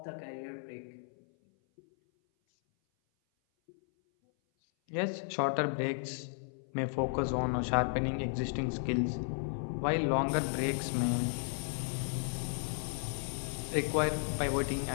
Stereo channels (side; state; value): right; silent; 55 dB below the other